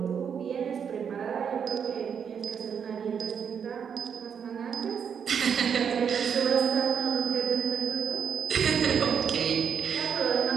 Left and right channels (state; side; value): quieter; left; 7.3 dB